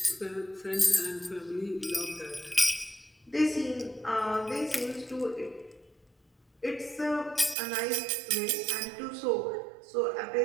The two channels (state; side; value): drops out; left; at 7.6 s